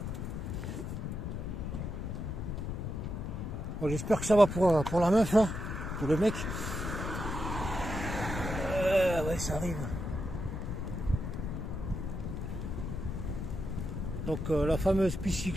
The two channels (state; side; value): noise; left; rumble, 4 dB below the sound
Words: Bon, j'espère que ça va pour la meuf, hein, pour le mec. Ouais, ça arrive. Donc la fameuse piste